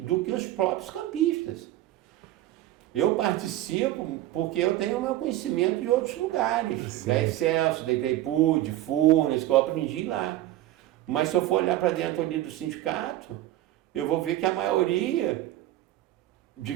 que os próprios campistas. Eu participo porque eu tenho o meu conhecimento de outros lugares, sim, da Excelsior, da Itaipu, de Furnas, que eu aprendi lá. Mas se eu for olhar para dentro ali do sindicato, eu vou ver que a maioria de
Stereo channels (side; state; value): left; quieter; 14.6 dB